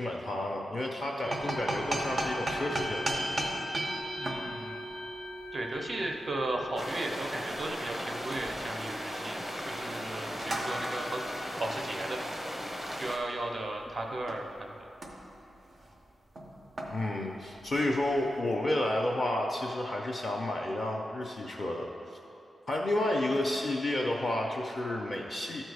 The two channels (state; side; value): normal; both; correlation 0.89